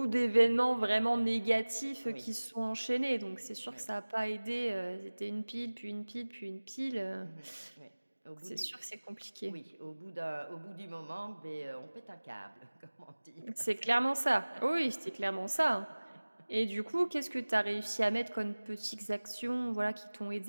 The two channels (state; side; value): inverted; both; correlation -1.00